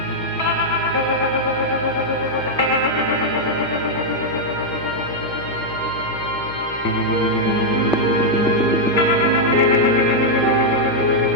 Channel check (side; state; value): left; noise; hum, 16 dB below the sound